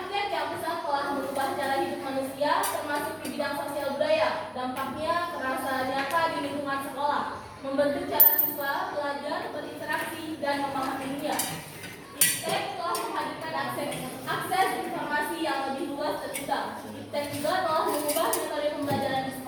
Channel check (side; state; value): both; identical; correlation 1.00